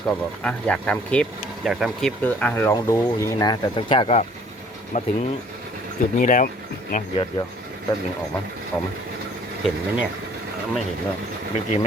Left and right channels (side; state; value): both; normal; correlation 0.57